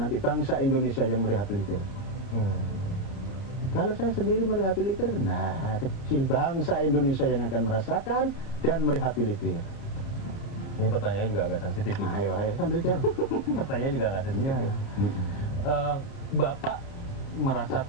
bangsa Indonesia yang merehabilitir. Kalau saya sendiri merehabilitir, nah kecil bangsa Indonesia yang akan merasakan dan merehabilitir. Ini pertanyaan juga agak sensitif. Ayo, sambil jalan. Pertanyaan juga agak sensitif. Bapak merasa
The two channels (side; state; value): right; late; 30 ms